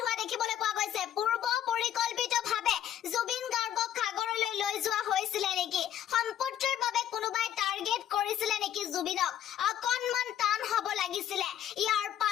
হোৱা দেখিবলৈ পোৱা গৈছে পূৰ্ব পৰিকল্পিতভাৱে জুবিন গাৰ্গক সাগৰলৈ লৈ যোৱা হৈছিলে নেকি সম্পত্তিৰ বাবে কোনোবাই টাৰ্গেট কৰিছিলে নেকি জুবিনক অকণমান টান হ'ব লাগিছিলে ইয়াৰ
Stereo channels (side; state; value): right; quieter; 10.8 dB